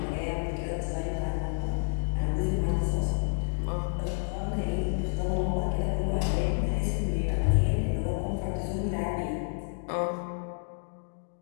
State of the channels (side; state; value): right; silent; digital silence